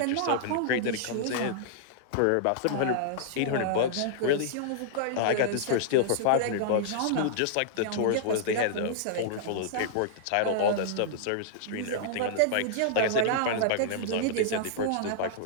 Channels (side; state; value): both; different; correlation -0.02